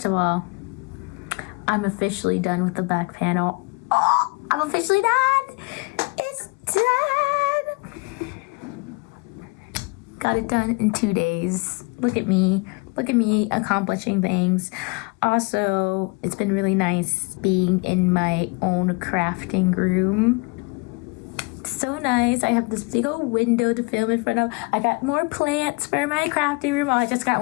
of all, I'm officially done with the back panel. Oh, I'm officially done. It's done. Got it done in 2 days. Look at me. Look at me accomplishing things. Also, it's been really nice being in my own crafting room. So nice. I have this big old window to film in front of. I got more plants for my crafting room. Oh, I just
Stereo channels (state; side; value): quieter; right; 29.3 dB